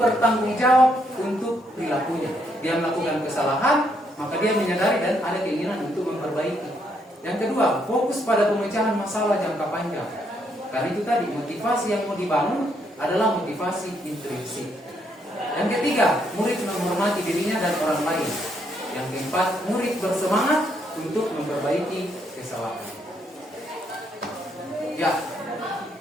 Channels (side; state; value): both; normal; correlation 0.74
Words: jawab untuk perilakunya. Dia melakukan kesalahan, maka dia menyadari dan ada keinginan untuk memperbaiki. Yang kedua, fokus pada pemecahan masalah jangka panjang. Karena itu tadi, motivasi yang mau dibangun adalah motivasi intrinsik. Yang ketiga, murid menghormati dirinya dan orang lain. Yang keempat, murid bersemangat untuk memperbaiki kesalahan. Ya,